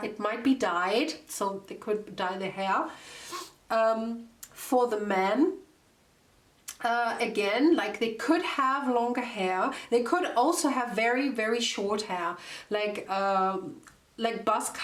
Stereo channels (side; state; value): both; identical; correlation 1.00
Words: it might be dyed, so they could dye their hair. For the men, again, like they could have longer hair. They could also have very, very short hair, like buzz